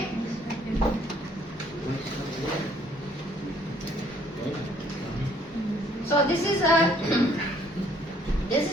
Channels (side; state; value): both; normal; correlation 0.63